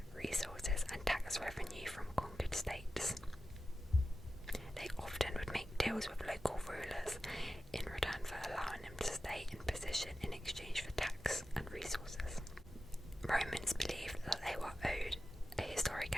resources, and tax revenue from conquered states. They often would make deals with local rulers in return for allowing them to stay in position in exchange for tax and resources. Romans believed that they were owed a historic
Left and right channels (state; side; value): normal; both; correlation 0.93